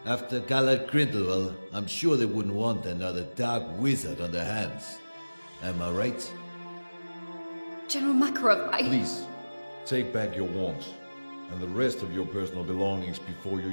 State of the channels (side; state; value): both; inverted; correlation -1.00